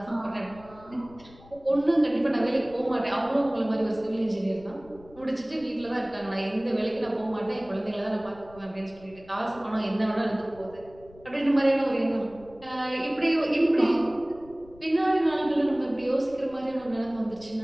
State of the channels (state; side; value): noise; left; rumble, 23 dB below the sound